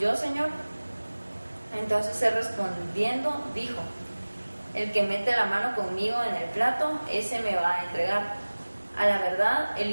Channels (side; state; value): both; inverted; correlation -1.00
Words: Señor? Entonces él respondiendo dijo: el que mete la mano conmigo en el plato, ese me va a entregar. A la verdad, el